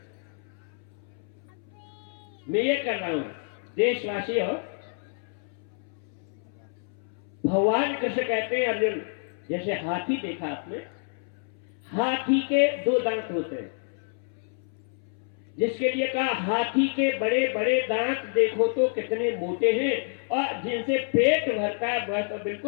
मैं ये कर रहा हूं, देशवासी हो। भगवान कृष्ण कहते हैं अर्जुन, जैसे हाथी देखा आपने, हाथी के दो दांत होते हैं, जिसके लिए कहा हाथी के बड़े बड़े दांत देखो तो कितने मोटे हैं और जिनसे पेट भरता है वह तो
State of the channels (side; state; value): right; silent; 59 dB below the other